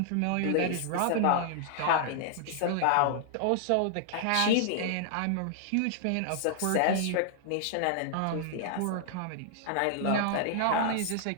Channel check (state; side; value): different; both; correlation -0.01